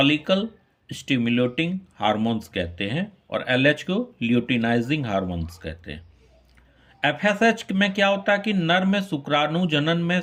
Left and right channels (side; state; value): both; identical; correlation 1.00